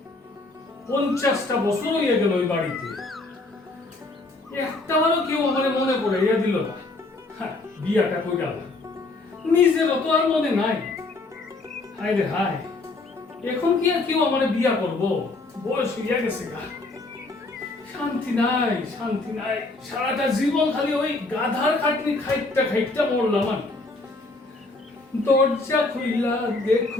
50টা বছর হয়ে গেল ওই বাড়িতে, একটাবারও কেউ আমার মনে পড়াইয়া দিল না। বিয়াটা কই গেল, নিজেরও তো আর মনে নাই। হায় রে হায়, এখন কি আর কেউ আমার বিয়া করবো? বয়স হইয়া গেছে গা, শান্তি নাই, শান্তি নাই। সারাটা জীবন খালি ওই গাধার খাটনি খাইটা খাইটা মরলাম আমি। দরজা খুইলা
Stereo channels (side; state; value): right; quieter; 3.2 dB